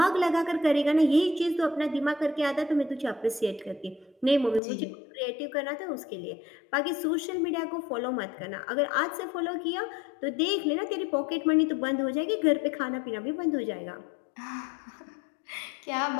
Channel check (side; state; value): right; drops out; at 4.6 s